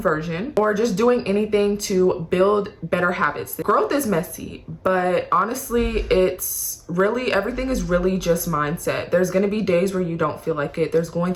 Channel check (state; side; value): identical; both; correlation 1.00